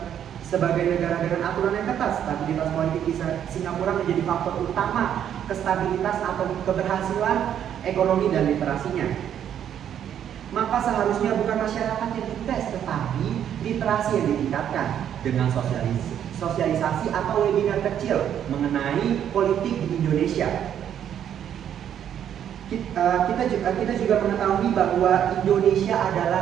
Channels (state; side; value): quieter; left; 9.6 dB